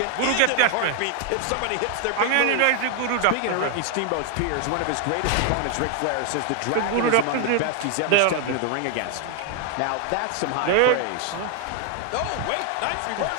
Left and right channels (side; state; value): both; different; correlation 0.00